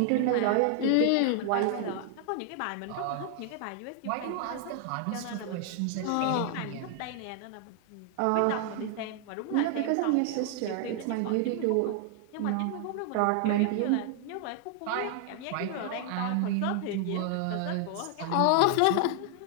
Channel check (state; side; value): different; both; correlation 0.00